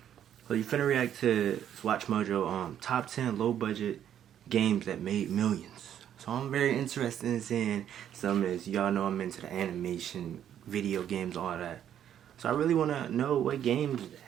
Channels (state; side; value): quieter; left; 10.1 dB